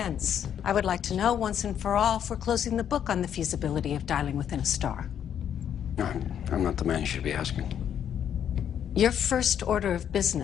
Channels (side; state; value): right; quieter; 9.2 dB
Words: I would like to know once and for all if we're closing the book on the feasibility of dialing within a star. I'm not the man you should be asking. Your first order of